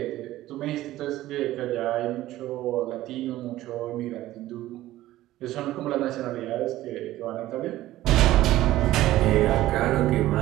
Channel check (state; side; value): quieter; left; 15.3 dB